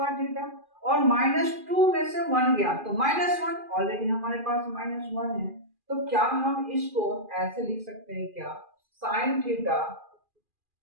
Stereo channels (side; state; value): left; late; 2.4 ms